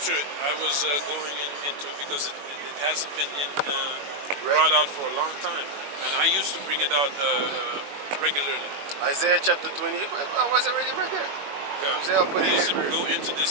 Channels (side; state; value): left; late; 21 ms